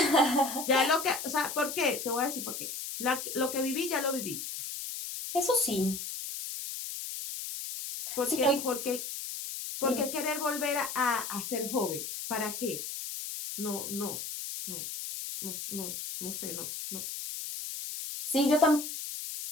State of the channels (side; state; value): left; noise; hiss, 6 dB below the sound